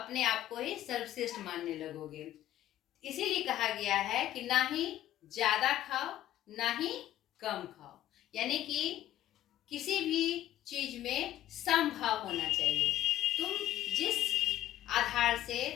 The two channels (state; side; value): quieter; right; 13.3 dB